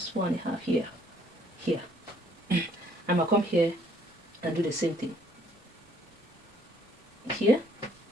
1.5 here. I'm going to come here and do the same thing here.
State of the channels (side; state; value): both; normal; correlation 0.63